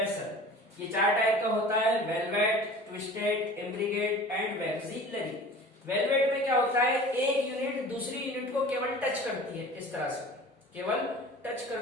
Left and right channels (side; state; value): both; normal; correlation 0.41